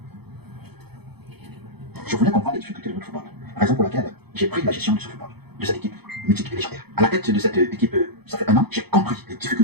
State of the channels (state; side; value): late; left; 0.98 ms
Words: Je voulais comprendre les difficultés de notre football, raison pour laquelle j'ai pris la gestion de ce football, de cette équipe mythique et légendaire. À la tête de cette équipe, ça fait un an, j'ai compris les